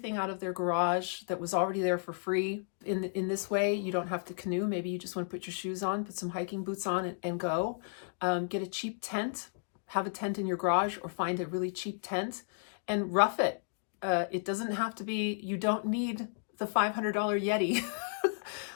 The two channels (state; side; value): silent; right; digital silence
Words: out of their garage that was already there for free. In this way, you don't have to canoe. Maybe you just want to put your shoes on, put some hiking boots on and go. Get a cheap tent, have a tent in your garage, or find a really cheap tent and rough it. It doesn't have to be, you don't need the $500 Yeti.